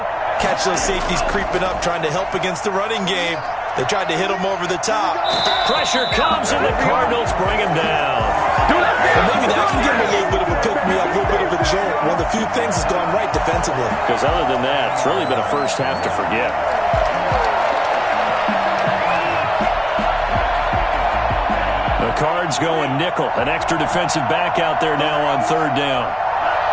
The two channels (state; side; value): identical; both; correlation 1.00